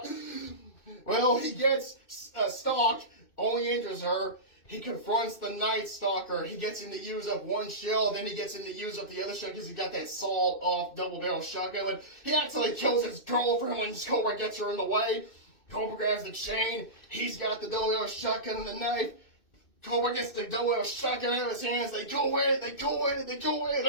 Well, he gets stalked, only injures her. He confronts the Night Stalker. He gets him to use up one shell, then he gets him to use up the other shell because he got that sawed-off double-barrel shotgun. And he actually kills his girlfriend when Cobra gets her in the way. Cobra grabs the chain. He's got the double-barrel shotgun and the knife. Cobra gets the double-barrel shotgun out of his hands. They go at it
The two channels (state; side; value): late; right; 2.6 ms